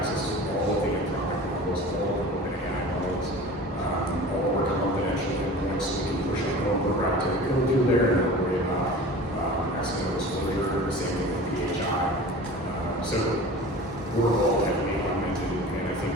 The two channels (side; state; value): both; normal; correlation 0.38